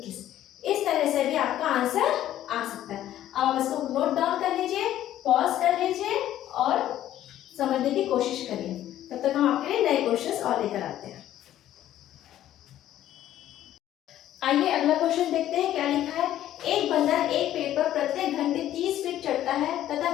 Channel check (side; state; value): right; quieter; 12.5 dB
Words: इस तरह से भी आपका आंसर आ सकता है। अब आप इसको नोट डाउन कर लीजिए, पॉज कर लीजिए और समझने की कोशिश करिए। तब तक हम आपके लिए नए क्वेश्चंस और लेकर आते हैं। आइए अगला क्वेश्चन देखते हैं क्या लिखा है। एक बंदर एक पेड़ पर प्रत्येक घंटे 30 फीट चढ़ता है तथा